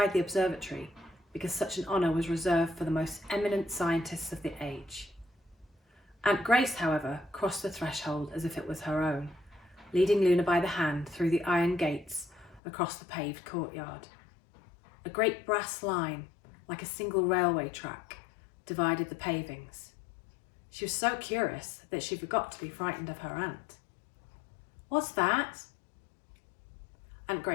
the observatory, because such an honour was reserved for the most eminent scientists of the age. Aunt Grace, however, crossed the threshold as if it was her own, leading Luna by the hand through the iron gates across the paved courtyard. A great brass line, like a single railway track, divided the pavings. She was so curious that she forgot to be frightened of her aunt. "What's that?" Aunt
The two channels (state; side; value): drops out; right; at 12.6 s